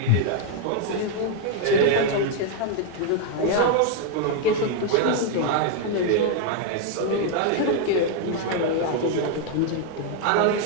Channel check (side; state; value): both; different; correlation 0.00